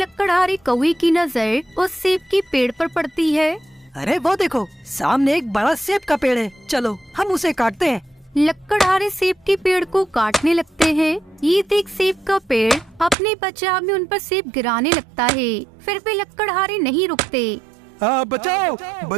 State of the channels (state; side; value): drops out; left; at 13.2 s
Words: कौवे की नजर उस सेब के पेड़ पर पड़ती है। अरे वो देखो, सामने एक बड़ा सेब का पेड़ है, चलो हम उसे काटते हैं। लकड़हारे सेब के पेड़ को काटने लगते हैं। ये देख सेब का पेड़ अपने बचाव में उन पर सेब गिराने लगता है। फिर भी लकड़हारे नहीं रुकते। बचाओ